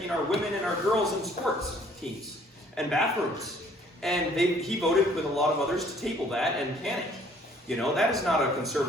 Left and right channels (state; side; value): normal; both; correlation 0.59